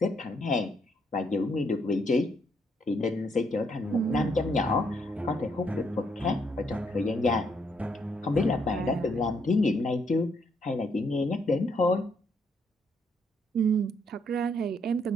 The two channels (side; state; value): both; normal; correlation 0.73